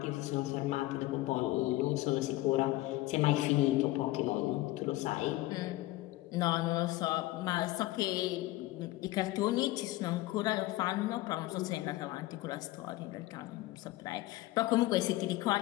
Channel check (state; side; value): quieter; right; 17.9 dB